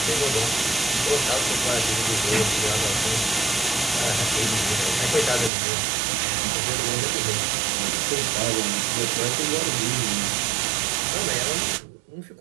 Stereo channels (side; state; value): left; drops out; at 5.5 s